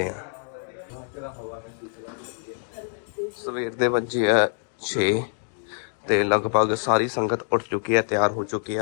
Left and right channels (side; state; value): right; silent; 61 dB below the other